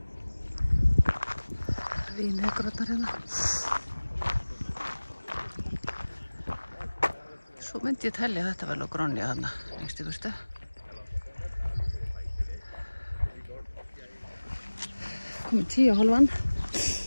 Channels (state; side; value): inverted; both; correlation -1.00